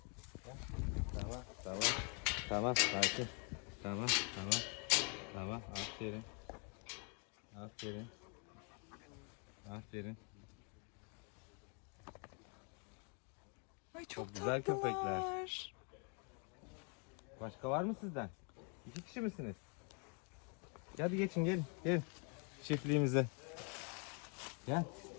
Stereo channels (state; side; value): quieter; right; 37.3 dB